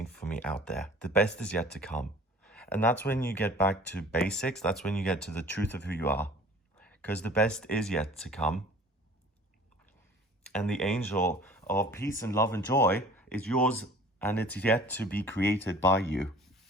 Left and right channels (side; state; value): both; normal; correlation 0.47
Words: for me out there. The best is yet to come. And that's when you get back to basics. That's when you get to the truth of who you are, because the best is yet to come. And the angel of peace and love and joy is yours, and it's yet to be created by you.